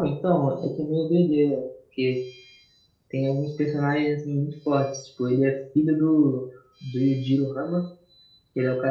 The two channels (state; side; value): identical; both; correlation 1.00